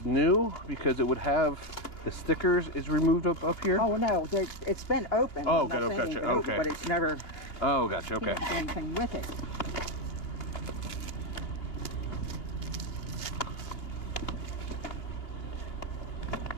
new because it would have the stickers is removed up here. Oh no, it's been open. Oh, I'm not okay, saying gotcha, it's been open, okay. but it's never Oh, gotcha. Okay. done anything with it.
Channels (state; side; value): late; right; 2.8 ms